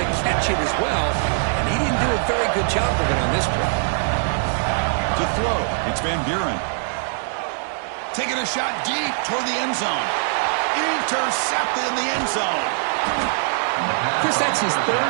catch it as well, and he didn't do a very good job of it on this play. To throw, it's Van Buren. Taking a shot deep toward the end zone. Intercepted in the end zone. Chris, that's his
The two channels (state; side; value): silent; left; 60 dB below the other